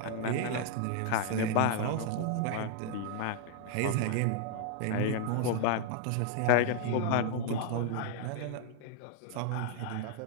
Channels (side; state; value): both; different; correlation 0.00